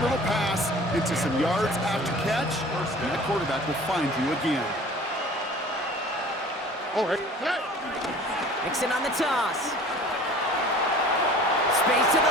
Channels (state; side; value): normal; both; correlation 0.45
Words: pass into some yards after catch, and the quarterback will find you again. All right. Mixon on the toss. Space to